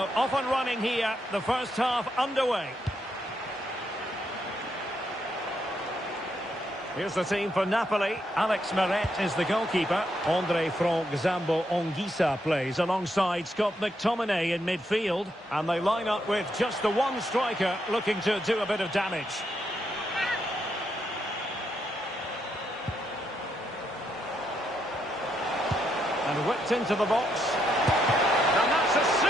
off and running here, the first half underway. Here's the team for Napoli. Alex Meret is the goalkeeper. Andre Franck Zambo Onguissa plays alongside Scott McTominay in midfield. And they line up with just the one striker looking to do a bit of damage. And whipped into the box. And that's a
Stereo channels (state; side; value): normal; both; correlation 0.78